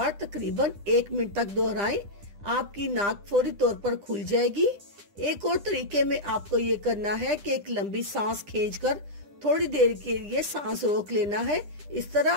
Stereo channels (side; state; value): left; late; 10 ms